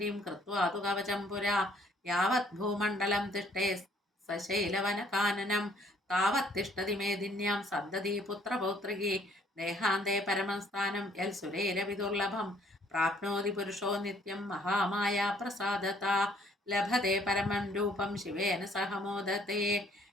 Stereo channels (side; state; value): both; normal; correlation 0.62